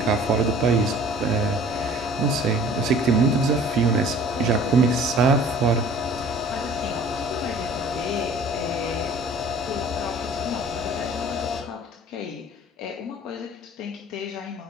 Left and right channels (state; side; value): normal; both; correlation 0.49